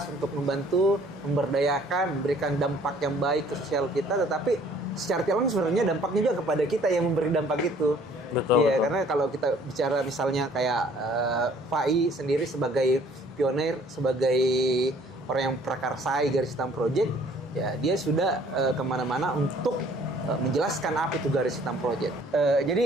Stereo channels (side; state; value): both; normal; correlation 0.57